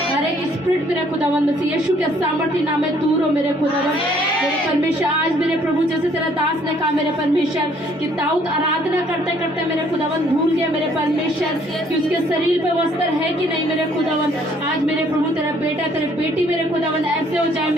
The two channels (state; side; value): normal; both; correlation 0.62